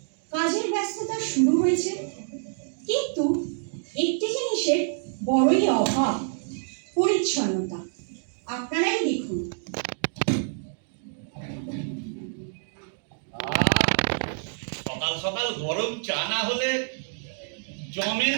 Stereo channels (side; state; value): left; silent; digital silence